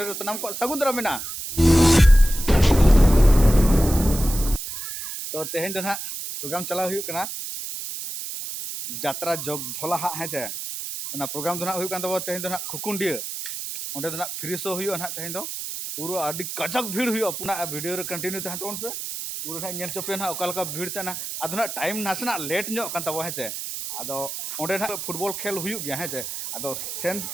सनम को सगुंदरा मेना तो तेहन दो ना प्रोग्राम चला हुई करना जात्रा जोग धोला हाँ है चे ना प्रोग्राम दो ना हुई कान तब तेहन दो ना खुकुंडिया ओंडे दो ना फ्री शो हुई ना तेहन दो पूरा आदि कजक भीड़ हुई अपना वीडियो रे कंटिन्यू तहन तोन पे पूरा ना नेल चोपे ना ओका भीड़ तना आदो ना टाइम नासना लेट ᱧᱚᱜ कान तब है चे आदो ओंडे ना फुटबॉल खेल हुई गया है चे आदो सेन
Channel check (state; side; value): noise; right; hiss, 7 dB below the sound